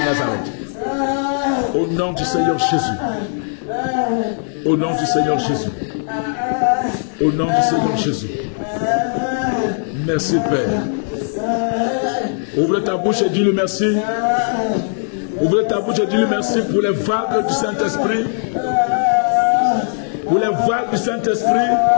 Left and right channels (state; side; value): silent; right; digital silence